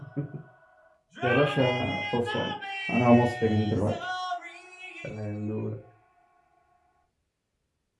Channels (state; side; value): identical; both; correlation 1.00